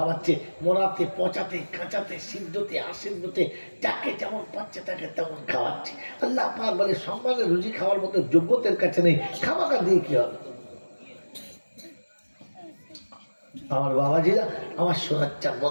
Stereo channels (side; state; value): both; inverted; correlation -1.00